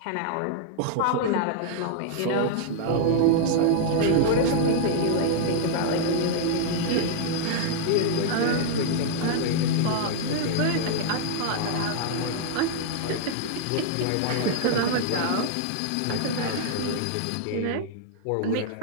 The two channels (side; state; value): both; different; correlation -0.01